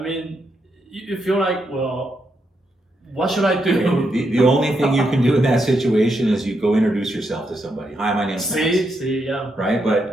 you feel like, well, what should I do? The only thing you can do in that situation is you go introduce yourself to somebody. Hi, my name's Max. Yeah. Right?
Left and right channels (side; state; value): both; normal; correlation 0.81